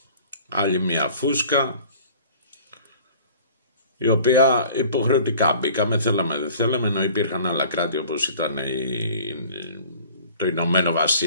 άλλη μια φούσκα, η οποία υποχρεωτικά μπήκαμε, θέλαμε δεν θέλαμε, ενώ υπήρχαν άλλα κράτη όπως ήταν το Ηνωμένο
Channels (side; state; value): both; inverted; correlation -0.48